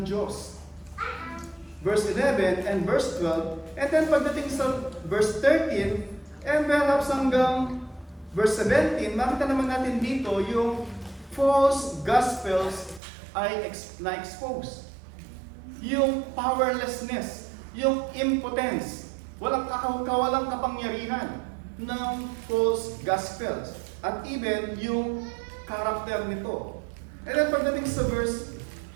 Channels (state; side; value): drops out; left; at 13.0 s